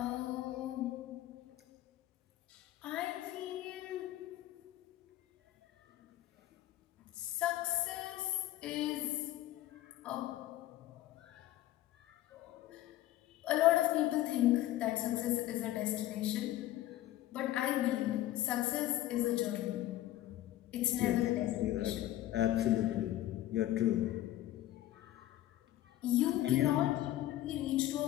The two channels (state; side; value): quieter; right; 14.4 dB